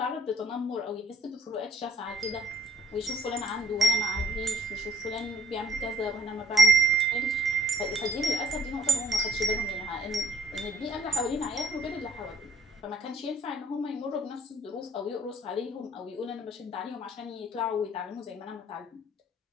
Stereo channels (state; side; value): normal; both; correlation 0.59